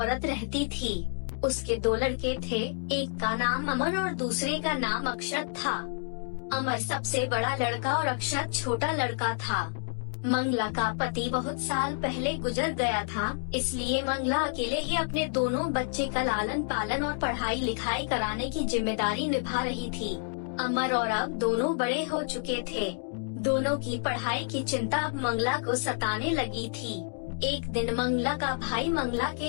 रहती थी। उसके दो लड़के थे, एक का नाम अमर और दूसरे का नाम अक्षत था। अमर सबसे बड़ा लड़का और अक्षत छोटा लड़का था। मंगला का पति बहुत साल पहले गुजर गया था, इसलिए मंगला अकेले ही अपने दोनों बच्चे का लालन पालन और पढ़ाई लिखाई कराने की जिम्मेदारी निभा रही थी। अमर और अब दोनों बड़े हो चुके थे। दोनों की पढ़ाई की चिंता अब मंगला को सताने लगी थी। एक दिन मंगला का भाई मंगला के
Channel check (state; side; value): silent; right; digital silence